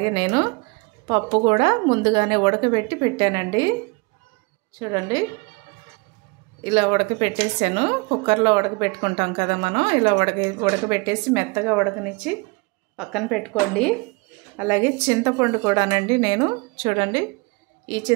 నేను పప్పు కూడా ముందుగానే ఉడకబెట్టి పెట్టానండి. చూడండి, ఇలా ఉడకబెట్టేసాను. కుక్కర్లో ఉడకబెట్టుకుంటాం కదా మనం, ఇలా ఉడకబెట్టేసి మెత్తగా ఉడకనిచ్చి పక్కన పెట్టుకోండి. అలాగే చింతపండు కూడానండి, నేను చూడండి ఈ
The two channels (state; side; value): quieter; left; 28.4 dB